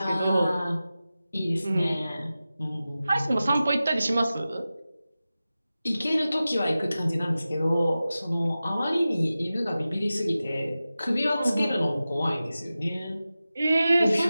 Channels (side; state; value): both; inverted; correlation -0.95